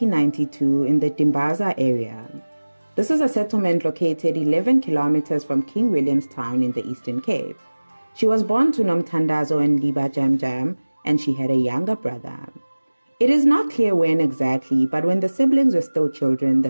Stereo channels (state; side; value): inverted; both; correlation -1.00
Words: in the Dimbaza area. This is a settlement located 11 kilometers from King Williamstown in the Eastern Cape. She was born to Nomthandazo and Aviwe Jam Jam, and she had a younger brother. It is not clear when exactly, but when the siblings were still children,